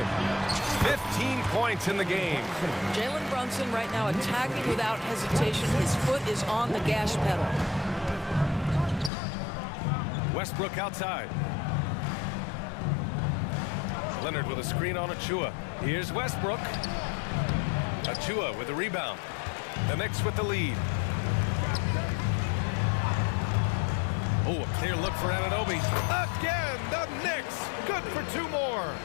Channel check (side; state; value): right; drops out; at 9.1 s